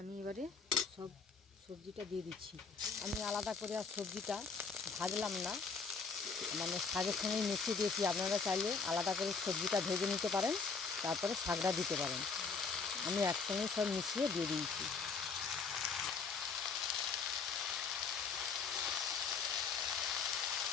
আমি এবারে সব সবজিটা দিয়ে দিচ্ছি। আমি আলাদা করে আর সবজিটা ভাজলাম না, মানে শাকের সঙ্গেই মিশিয়ে দিয়েছি। আপনারা চাইলে আলাদা করে সবজিটা ভেজে নিতে পারেন, তারপরে শাকটা দিতে পারেন। আমি একসঙ্গে সব মিশিয়ে দিয়ে দিয়েছি।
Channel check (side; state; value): right; quieter; 5.0 dB